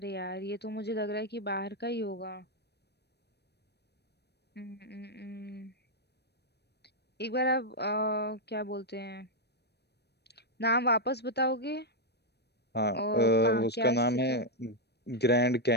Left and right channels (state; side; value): late; right; 0.48 ms